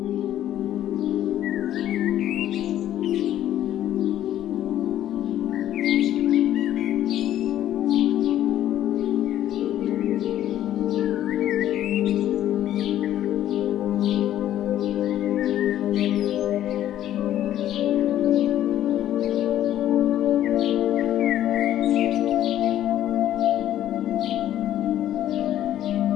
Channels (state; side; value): quieter; right; 12.1 dB